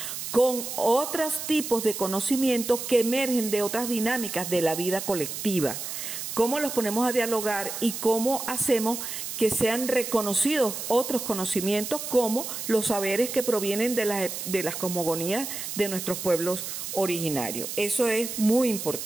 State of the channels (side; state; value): right; noise; hiss, 6 dB below the sound